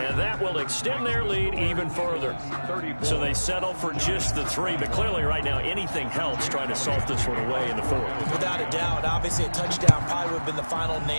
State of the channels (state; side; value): inverted; both; correlation -1.00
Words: And that will extend their lead even further. So they settle for just the 3. But clearly right now anything helps trying to salt this one away in the 4th. Without a doubt, obviously a touchdown probably would have been the final